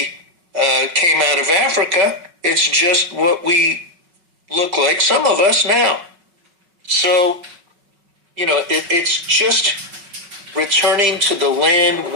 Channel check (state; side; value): late; left; 5.3 ms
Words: came out of Africa. It's just what we look like, some of us now. So, it's just returning to the land